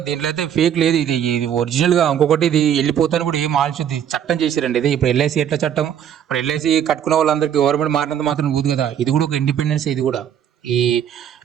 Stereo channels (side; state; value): left; quieter; 9.3 dB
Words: దీంట్లో అయితే ఫేక్ లేదు, ఇది ఒరిజినల్గా. ఇంకొకటి, ఇది వెళ్ళిపోతాను కూడా ఏం ఆలోచించి చట్టం చేశారండి. ఇది ఇప్పుడు ఎల్ఐసి ఎట్లా చట్టం, ఇప్పుడు ఎల్ఐసి కట్టుకున్న వాళ్ళందరికీ గవర్నమెంట్ మారినంత మాత్రం ఊదు కదా. ఇది కూడా ఒక ఇండిపెండెన్స్. ఇది కూడా ఈ